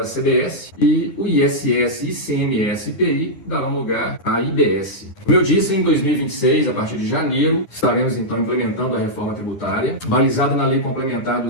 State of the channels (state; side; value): late; right; 9.7 ms